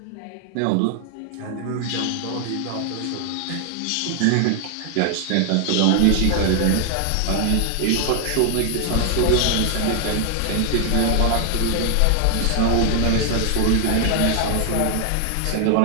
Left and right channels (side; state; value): both; different; correlation 0.00